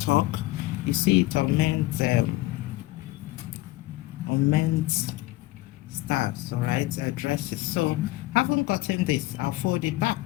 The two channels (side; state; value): right; quieter; 18.6 dB